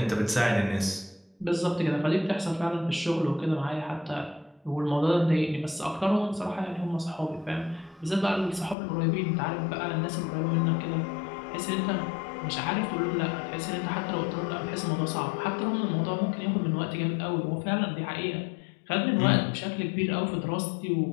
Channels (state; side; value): drops out; right; at 8.8 s